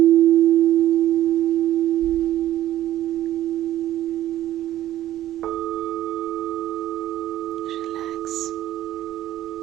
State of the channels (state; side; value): quieter; left; 13.3 dB